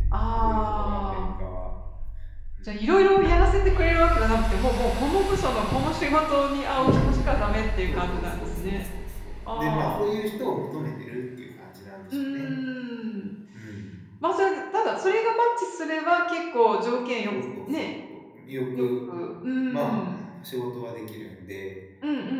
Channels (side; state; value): both; identical; correlation 1.00